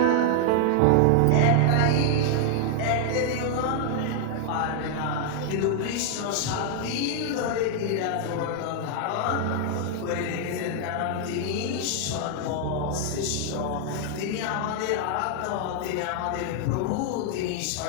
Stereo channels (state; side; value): different; both; correlation -0.01